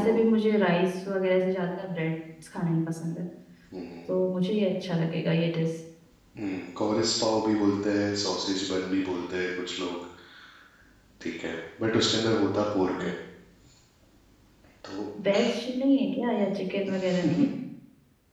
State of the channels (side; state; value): both; identical; correlation 1.00